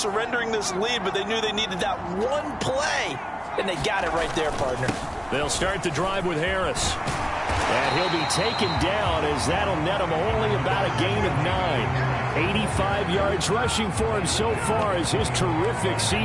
this lead, but they knew they needed that one play, and they got it right there, partner. They'll start the drive with Harris. And he'll be taken down as that'll net him only about a gain of 9. 85 yards rushing for him so far as his terrific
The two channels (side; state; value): both; identical; correlation 1.00